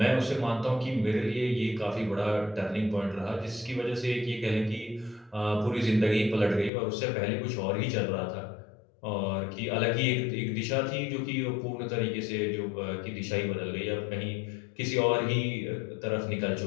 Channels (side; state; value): right; drops out; at 6.7 s